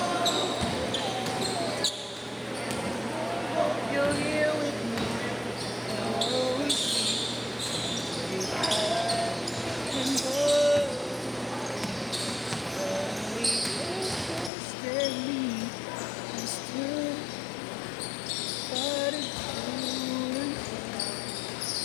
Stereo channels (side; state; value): right; drops out; at 14.5 s